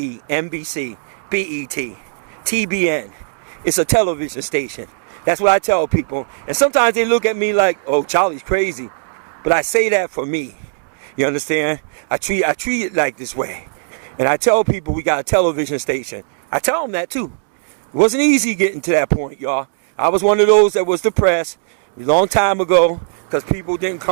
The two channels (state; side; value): silent; left; digital silence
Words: NBC, BET, TBN. It's a television station. That's what I tell people. And sometimes they look at me like, oh, Charlie's crazy. But I say that for me. You understand? I treat it like this way. And I tell people we got a television station. I tell them that too. It wasn't easy getting to that point, y'all. I was one of those that was depressed a long time ago because people didn't